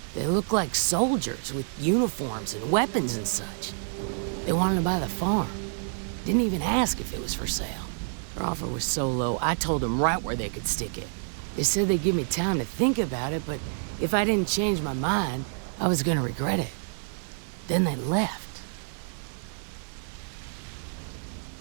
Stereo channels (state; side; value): silent; left; digital silence